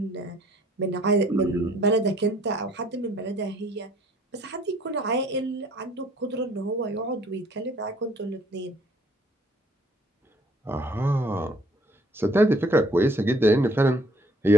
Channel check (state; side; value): normal; both; correlation 0.59